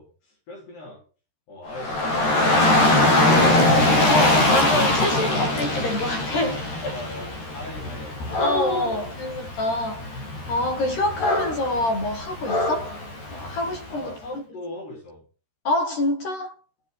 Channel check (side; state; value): right; late; 13 ms